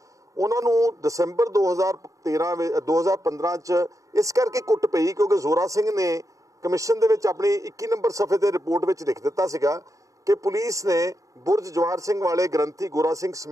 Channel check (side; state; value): left; late; 0.16 ms